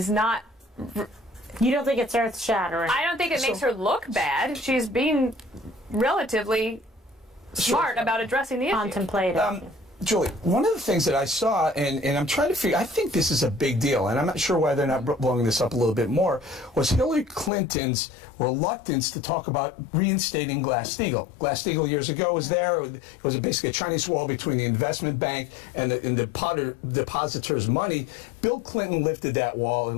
not... You don't think it's earth-shattering? I don't think it makes her look bad. She's being relatively smart about addressing the issue. Contemplative. Julie, one of the things that I saw, and I'm trying to figure, I think this is a big deal, and I'm not sure why they're not blowing this up a little bit more, was Hillary Clinton's reluctance to talk about reinstating Glass-Steagall. Glass-Steagall years ago was there. It was basically a Chinese wall between the investment bank and the depositors' money. Bill Clinton lifted that wall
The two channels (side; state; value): right; drops out; at 17.5 s